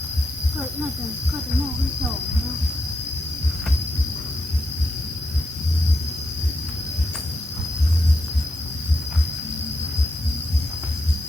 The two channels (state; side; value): normal; both; correlation 0.82